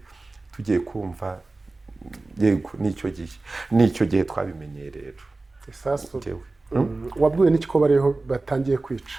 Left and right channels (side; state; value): left; quieter; 3.3 dB